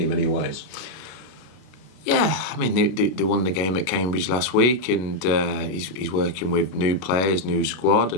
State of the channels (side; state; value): right; late; 32 ms